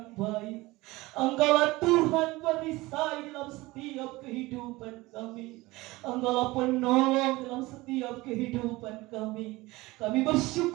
baik. Engkaulah Tuhan perisai dalam setiap kehidupan kami. Engkaulah penolong dalam setiap kehidupan kami. Kami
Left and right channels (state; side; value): quieter; left; 20.6 dB